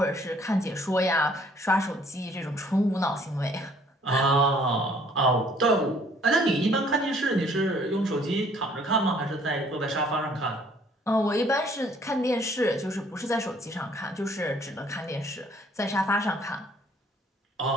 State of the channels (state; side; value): normal; both; correlation 0.59